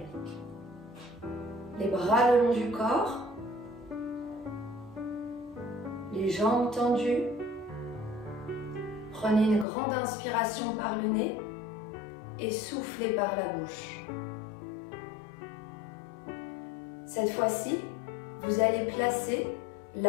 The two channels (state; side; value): drops out; right; at 9.7 s